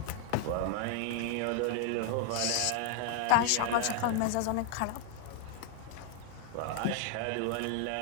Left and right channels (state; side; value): different; both; correlation 0.00